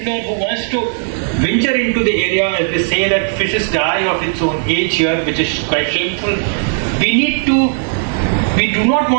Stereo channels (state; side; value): silent; left; 69 dB below the other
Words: who wants to venture into the area, as they say that fishes die of its own age here, which is quite shameful, we do not